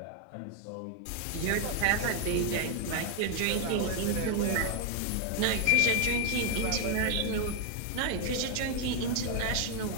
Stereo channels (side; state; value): both; different; correlation 0.00